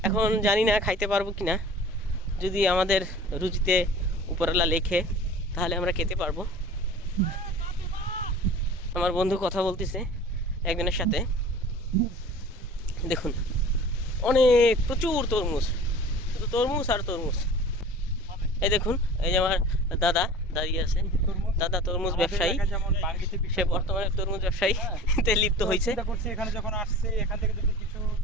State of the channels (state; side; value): normal; both; correlation 0.42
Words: এখন জানি না খাইতে পারবো কিনা, যদি আমাদের রুচিতে উপরওয়ালা লেখে তাহলে আমরা খেতে পারবো। আমার বন্ধু কথা বলতেছে একজনের সাথে, দেখুন অনেক প্রচুর তরমুজ, শুধু তরমুজ আর তরমুজ। এই দেখুন, এই যে আমার দাদা দাঁড়িয়ে আছে। দাদা তরমুজ ব্যবসায়ী, সে বর্তমানে তরমুজ ব্যবসায়ী তে লিপ্ত হয়েছে। চিন্তা করছি এখানে যখন আসছি এখান থেকে যদি কিছু